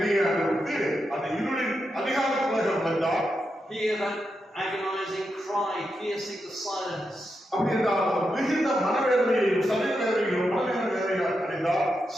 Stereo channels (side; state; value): both; normal; correlation 0.86